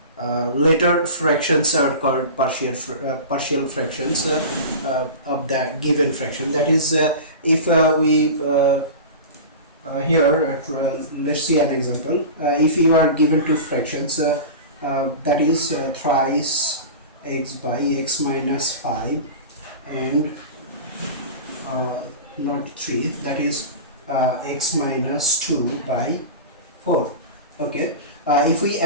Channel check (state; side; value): inverted; both; correlation -0.31